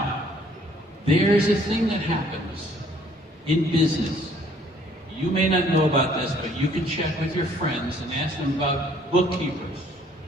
there's a thing that happens in business. You may not know about this, but you can check with your friends and ask them about bookkeepers.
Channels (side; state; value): both; normal; correlation 0.61